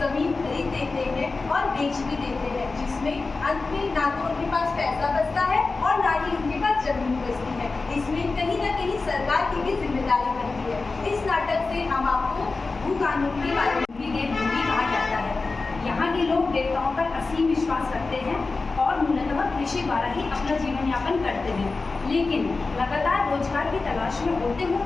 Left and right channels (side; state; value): right; quieter; 3.8 dB